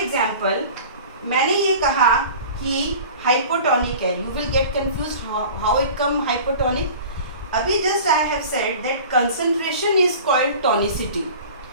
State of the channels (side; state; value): both; inverted; correlation -0.40